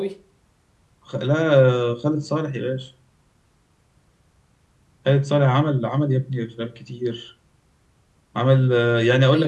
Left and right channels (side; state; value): both; identical; correlation 1.00